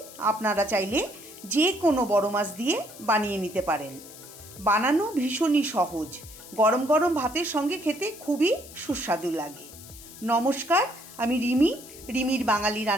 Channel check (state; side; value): noise; left; hiss, 17 dB below the sound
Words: আপনারা চাইলে যে কোনো বড় মাছ দিয়ে বানিয়ে নিতে পারেন। বানানো ভীষণই সহজ, গরম গরম ভাতের সঙ্গে খেতে খুবই সুস্বাদু লাগে। নমস্কার, আমি রিমির বাঙালি